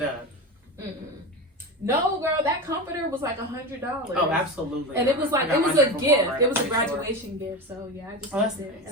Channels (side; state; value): both; normal; correlation 0.23